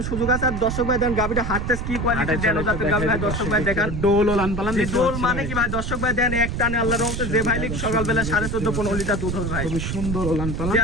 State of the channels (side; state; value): right; noise; rumble, 3 dB below the sound